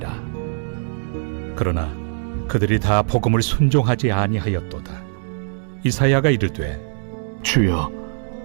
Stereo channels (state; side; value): silent; left; digital silence